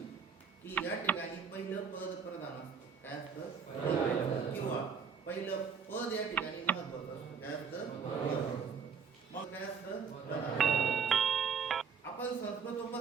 की या ठिकाणी पहिलं पद प्रधान असतं. काय असतं, किंवा पहिलं पद या ठिकाणी महत्वाचं असतं. काय असतं, मग काय असतं. आपण संस्कृत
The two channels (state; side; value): quieter; left; 6.3 dB